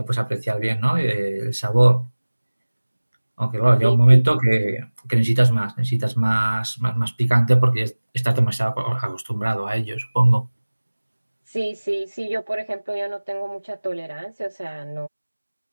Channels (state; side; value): inverted; both; correlation -1.00